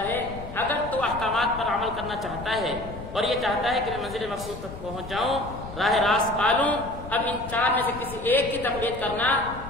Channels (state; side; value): noise; left; rumble, 12 dB below the sound